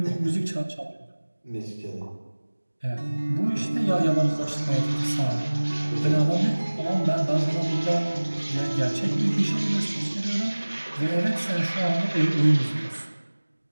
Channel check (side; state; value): both; inverted; correlation -1.00